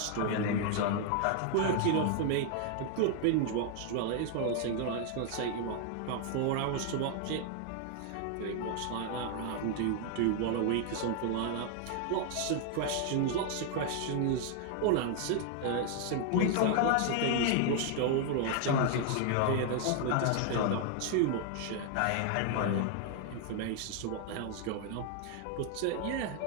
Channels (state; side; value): different; both; correlation 0.00